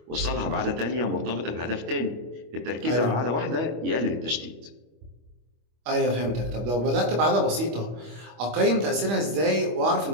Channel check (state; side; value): late; left; 25 ms